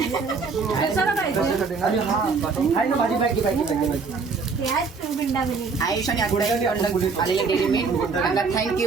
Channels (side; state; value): left; quieter; 4.8 dB